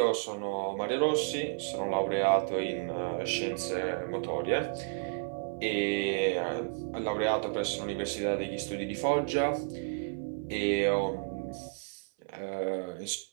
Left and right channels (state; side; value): silent; left; 57 dB below the other